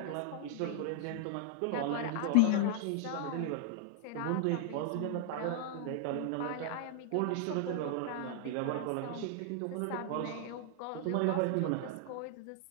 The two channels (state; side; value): different; both; correlation 0.00